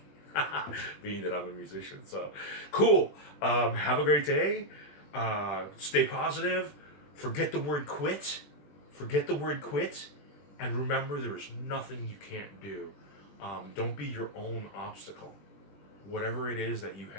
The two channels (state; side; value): late; right; 20 ms